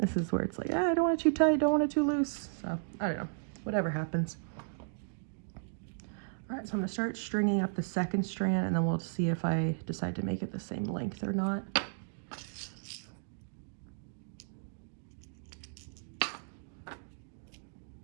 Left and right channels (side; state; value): left; silent; digital silence